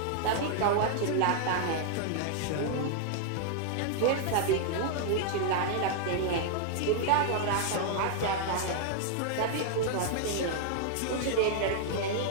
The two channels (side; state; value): both; different; correlation 0.00